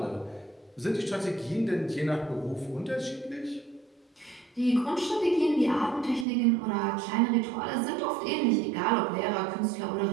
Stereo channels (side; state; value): left; drops out; at 6.2 s